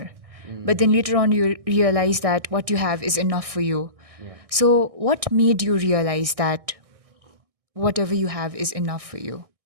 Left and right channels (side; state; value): left; late; 1.6 ms